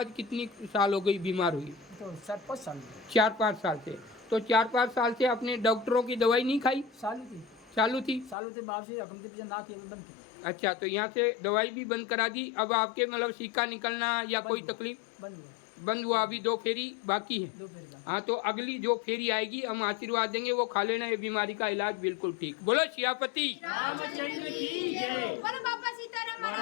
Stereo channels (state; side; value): drops out; right; at 8.3 s